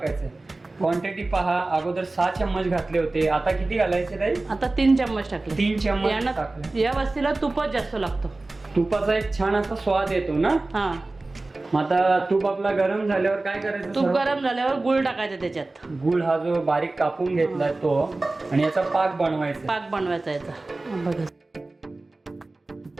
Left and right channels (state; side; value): quieter; left; 3.1 dB